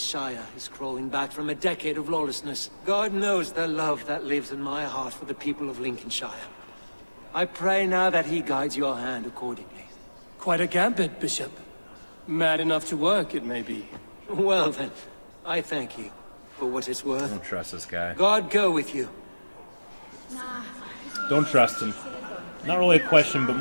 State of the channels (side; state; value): both; inverted; correlation -1.00